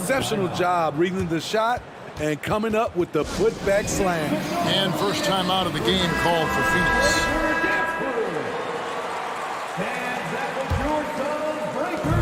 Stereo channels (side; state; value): both; identical; correlation 1.00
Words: job reading the shot and coming up with the putback slam. And first time out of the game called for Phoenix.